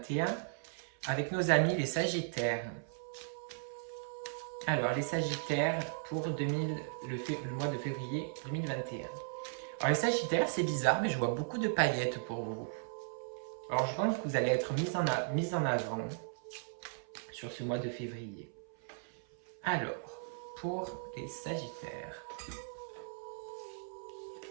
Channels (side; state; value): left; silent; 53 dB below the other